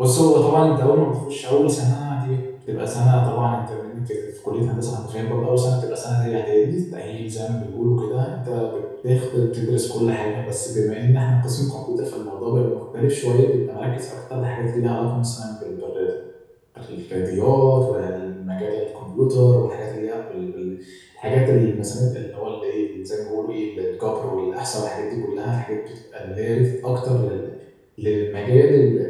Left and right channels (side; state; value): both; identical; correlation 1.00